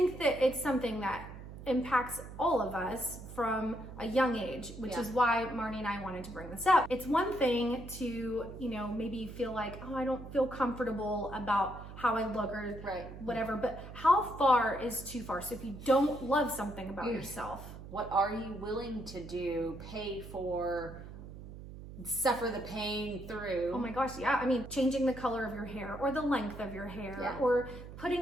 that it's something that impacts all of us from a young age, which is why Marnie and I wanted to bring this up. It's one thing to, you know, maybe feel like, oh, I don't feel comfortable about how I look or whatever, but how far is too far? So if you don't love something about yourself, what are you willing to do, pay for, suffer the pain through? Oh my gosh, yeah. I mean, changing the color of your hair or the length of your hair or putting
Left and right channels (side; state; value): right; noise; hum, 13 dB below the sound